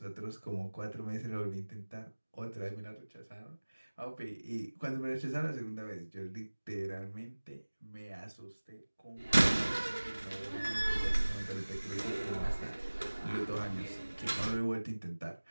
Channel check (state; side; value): inverted; both; correlation -1.00